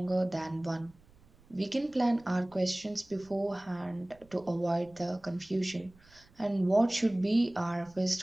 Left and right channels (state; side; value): noise; right; rumble, 28 dB below the sound